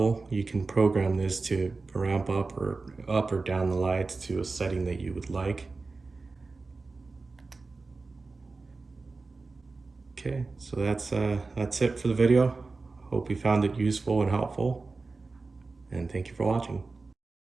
You can program this to ramp up or down the lights to a setting that you would like. Okay, so that's it for the video. Hope you found it useful and helpful, and thank you for watching.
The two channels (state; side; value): quieter; left; 3.8 dB